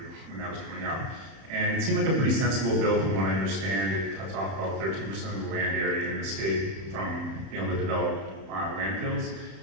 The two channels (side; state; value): left; late; 31 ms